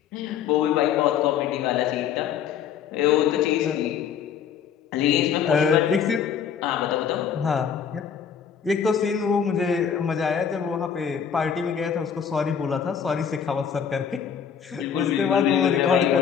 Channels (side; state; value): right; quieter; 7.8 dB